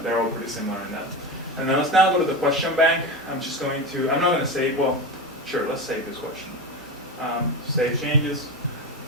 they're all pretty similar in that. And then let's now go to the question bank. I'm not going to save, well, sure, let's save this question. Save changes.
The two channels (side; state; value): both; normal; correlation 0.22